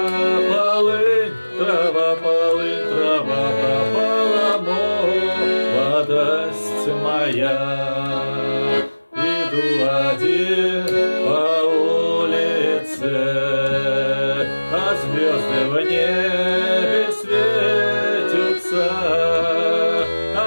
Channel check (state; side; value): inverted; both; correlation -1.00